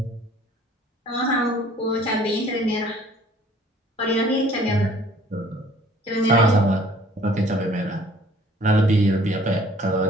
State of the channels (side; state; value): both; normal; correlation 0.54